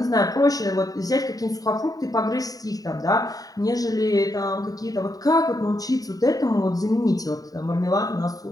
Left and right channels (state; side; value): late; right; 0.18 ms